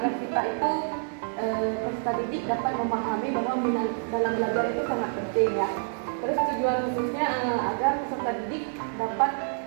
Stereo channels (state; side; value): silent; left; 60 dB below the other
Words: kita itu peserta didik dapat memahami bahwa minat dalam belajar itu sangat penting ya. Terus tujuan khususnya agar peserta didik dapat